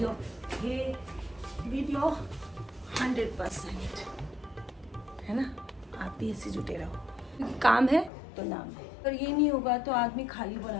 100%, है ना। आप भी ऐसे जुटे रहो, क्योंकि काम है तो नाम है। अगर ये नहीं होगा तो आदमी खाली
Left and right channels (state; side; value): drops out; right; at 8.1 s